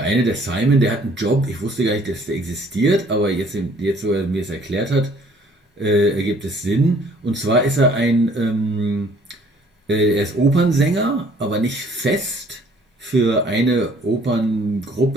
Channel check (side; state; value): both; normal; correlation 0.58